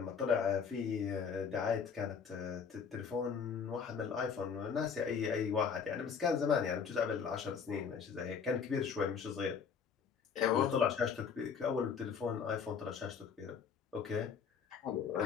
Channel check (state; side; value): quieter; right; 6.4 dB